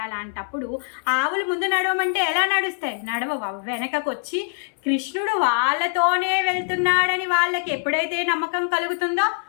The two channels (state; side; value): silent; right; 61 dB below the other